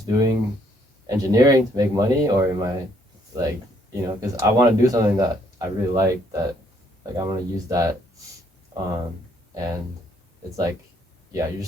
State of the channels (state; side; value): normal; both; correlation 0.68